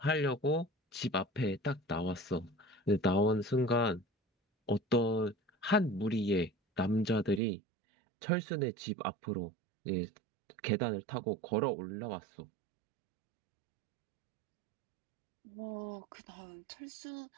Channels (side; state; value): left; drops out; at 7.4 s